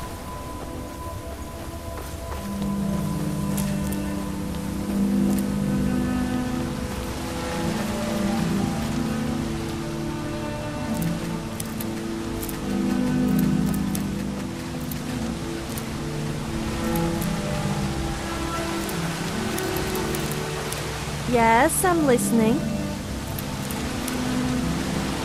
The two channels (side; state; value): both; identical; correlation 1.00